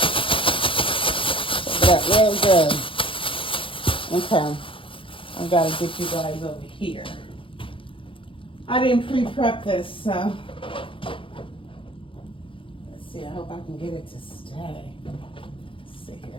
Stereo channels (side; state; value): right; late; 0.25 ms